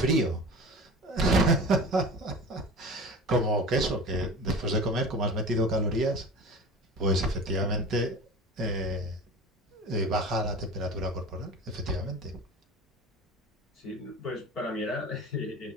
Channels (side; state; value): both; normal; correlation 0.35